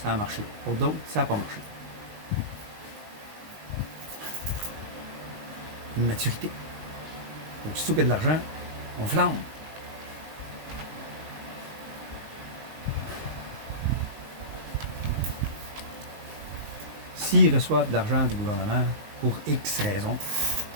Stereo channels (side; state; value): left; late; 19 ms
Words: ça a marché. Pour d'autres, ça n'a pas marché. une maturité. Aussitôt qu'il y a de l'argent, on flambe. S'ils reçoivent de l'argent du gouvernement pour X raisons,